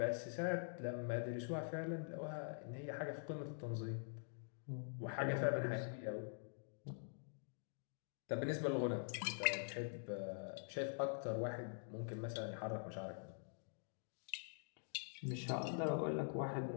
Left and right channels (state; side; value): silent; right; digital silence